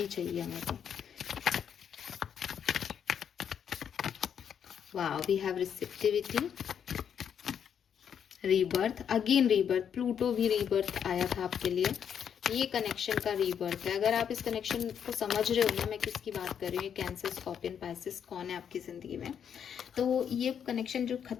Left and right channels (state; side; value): quieter; right; 8.1 dB